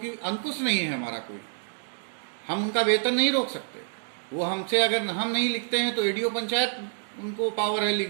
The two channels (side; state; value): left; silent; digital silence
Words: अंकुश नहीं है हमारा कोई, हम उनका वेतन नहीं रोक सकते। वो हमसे अगर हम नहीं लिखते हैं तो एडीओ पंचायत उनको पावर है, लिख